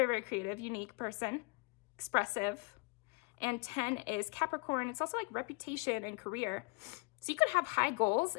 very creative, unique person, expressive. And 10 is Capricorn. It's also like reputation and career. So you could have high goals,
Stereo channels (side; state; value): right; quieter; 29.3 dB